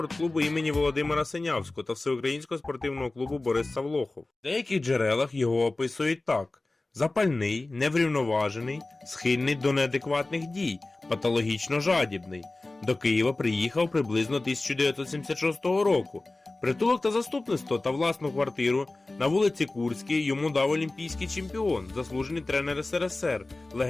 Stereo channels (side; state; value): right; quieter; 3.0 dB